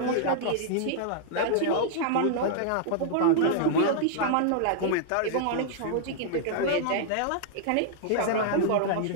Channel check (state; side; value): different; both; correlation -0.01